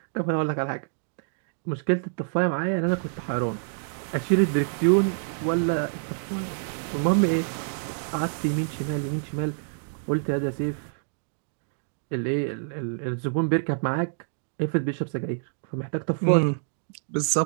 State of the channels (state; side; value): silent; left; digital silence